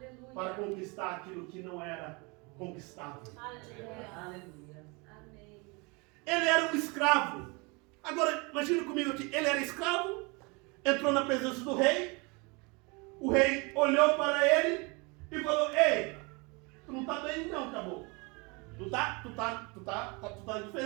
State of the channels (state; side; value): quieter; left; 29.0 dB